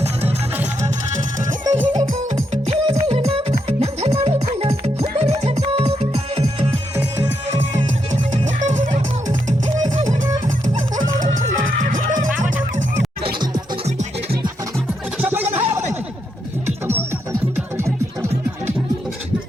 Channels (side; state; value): both; normal; correlation 0.80